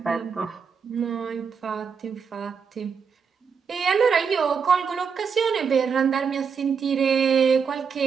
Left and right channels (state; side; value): quieter; left; 6.1 dB